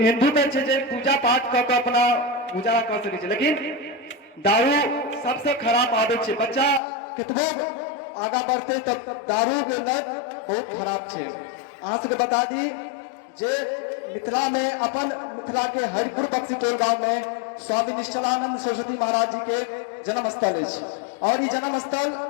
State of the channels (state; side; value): drops out; right; at 6.8 s